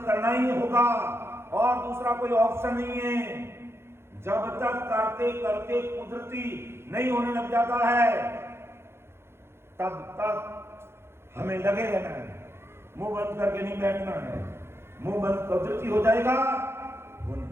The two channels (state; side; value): late; left; 0.12 ms